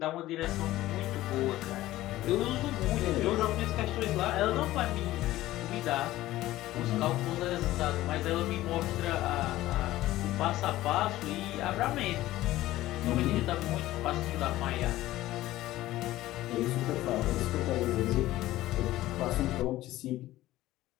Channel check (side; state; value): right; quieter; 15.9 dB